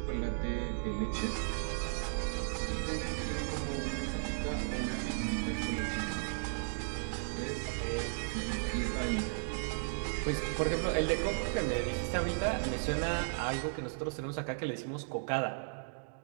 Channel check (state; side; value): silent; left; digital silence